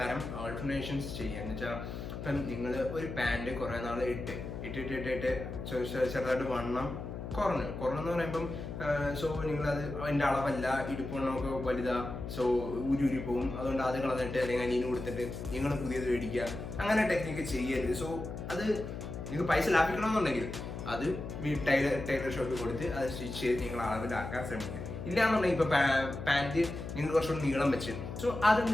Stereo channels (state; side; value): noise; left; hum, 7 dB below the sound